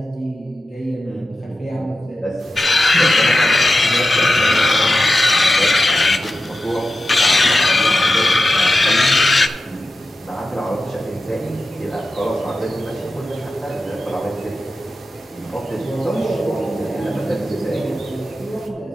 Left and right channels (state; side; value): normal; both; correlation 0.92